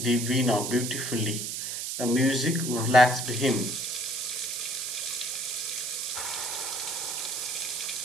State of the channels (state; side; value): noise; right; hiss, 3 dB below the sound